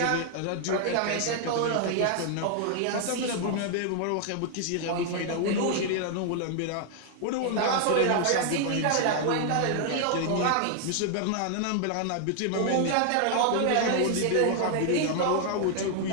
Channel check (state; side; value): different; both; correlation 0.00